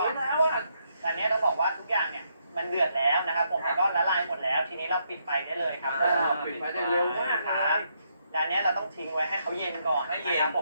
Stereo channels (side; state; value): both; inverted; correlation -0.77